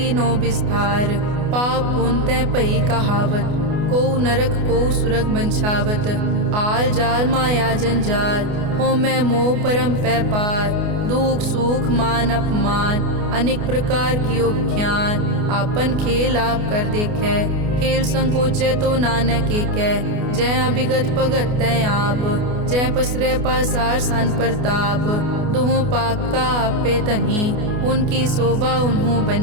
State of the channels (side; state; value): left; late; 28 ms